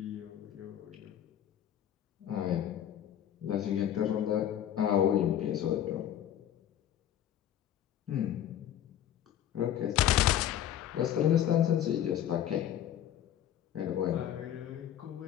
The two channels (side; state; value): right; quieter; 10.7 dB